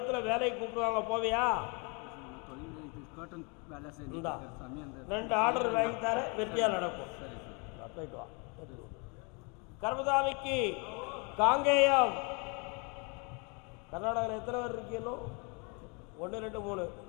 வேலைக்கு கூப்பிடுவாங்க, போவியா? இந்தா 2 ஆர்டர் வாங்கி தர, வெற்றியாக நடக்கும். போயிட்டு வா. கர்மசாமிக்கு காங்கேயம். கர்நாடகாவில் எத்தனை பேர் இருக்கீங்களோ? 1 2 3.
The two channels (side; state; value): right; quieter; 32.7 dB